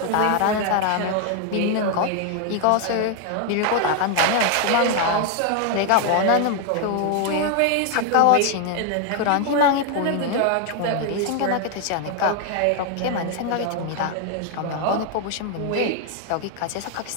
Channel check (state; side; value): different; both; correlation 0.00